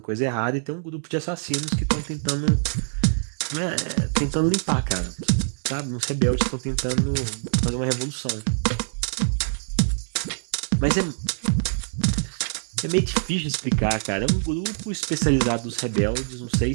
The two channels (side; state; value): left; silent; 62 dB below the other